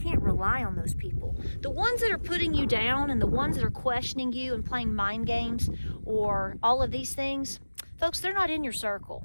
rely on those people. The ones that are putting you down and the ones that are questioning you and playing mind games or all of these things, folks, they're not in your circle.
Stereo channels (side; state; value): both; inverted; correlation -1.00